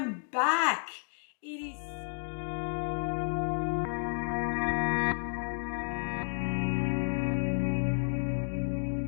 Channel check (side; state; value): right; silent; 57 dB below the other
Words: back. It is